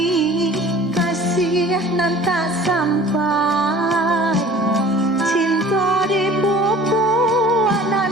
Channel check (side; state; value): both; normal; correlation 0.46